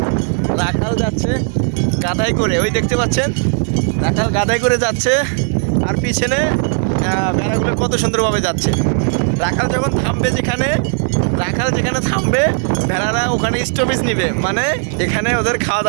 রাখাল যাচ্ছে গাধাই করে, ওই দেখতে পাচ্ছেন রাখাল গাধাই করে যাচ্ছে। আর পিছনে ভেড়াগুলো কত সুন্দরভাবে যাচ্ছে। রাখাল যখন থামবে, রাখাল যেখানে থামবে, ভেড়ারা ওখানে স্টপেজ নিবে, মানে এখানে ওদের খাওয়া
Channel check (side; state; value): left; silent; 57 dB below the other